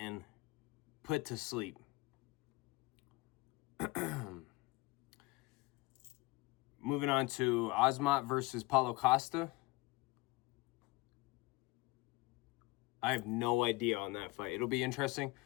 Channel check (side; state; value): right; quieter; 23.1 dB